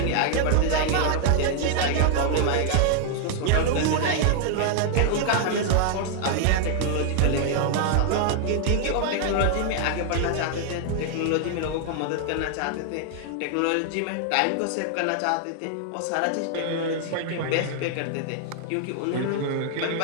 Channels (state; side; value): different; both; correlation 0.00